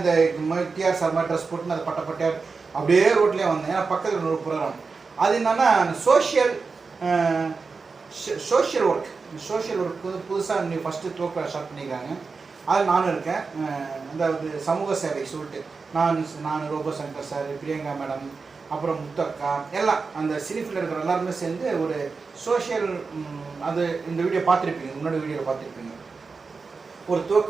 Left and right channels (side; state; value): left; quieter; 4.6 dB